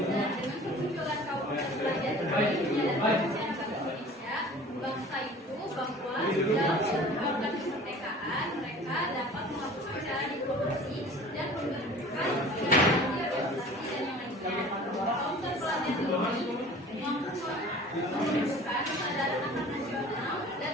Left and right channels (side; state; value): both; normal; correlation 0.44